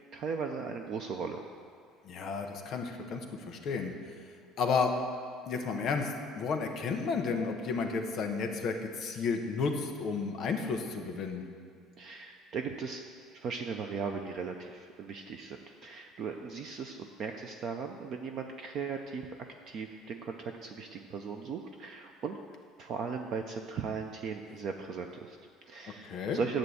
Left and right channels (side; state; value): both; normal; correlation 0.55